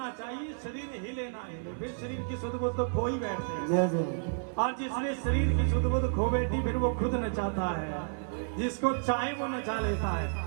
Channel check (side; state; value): left; silent; digital silence